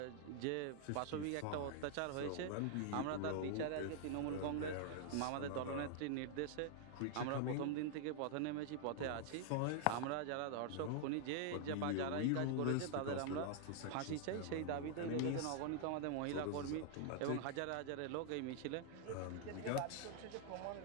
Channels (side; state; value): both; different; correlation 0.00